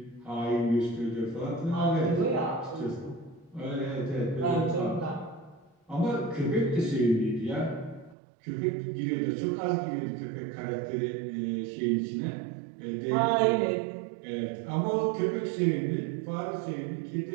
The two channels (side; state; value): left; drops out; at 8.2 s